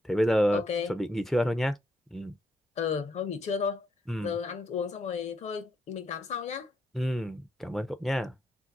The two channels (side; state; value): both; normal; correlation 0.78